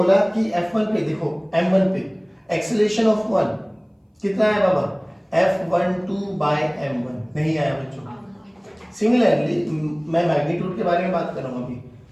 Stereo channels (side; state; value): both; identical; correlation 1.00